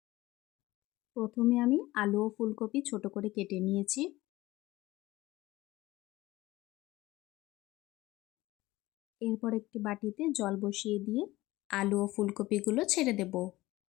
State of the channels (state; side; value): quieter; right; 18.4 dB